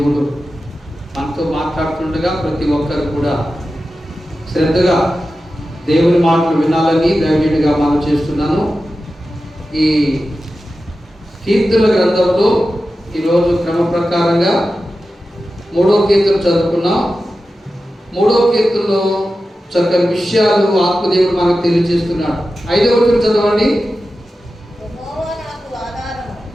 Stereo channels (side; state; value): both; normal; correlation 0.93